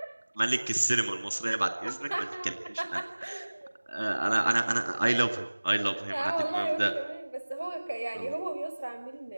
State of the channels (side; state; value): both; inverted; correlation -1.00